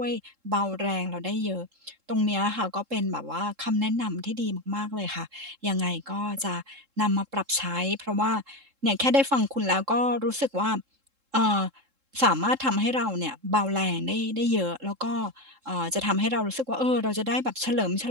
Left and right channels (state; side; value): late; left; 3.7 ms